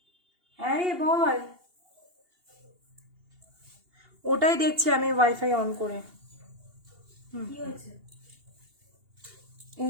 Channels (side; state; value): left; late; 2.8 ms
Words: হ্যাঁ রে বল, ওটাই দেখছি আমি ওয়াইফাই অন করে। কি হয়েছে?